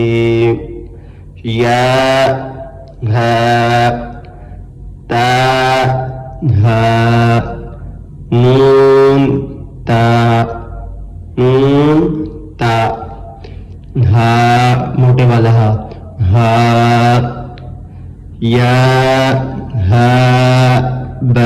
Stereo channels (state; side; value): identical; both; correlation 1.00